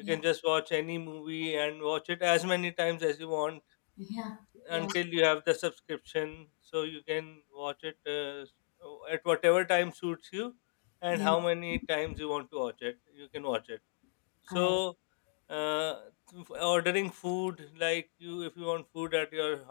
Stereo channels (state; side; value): silent; right; digital silence